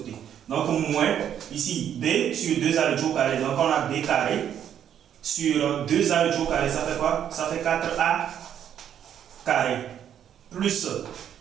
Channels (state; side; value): quieter; left; 9.5 dB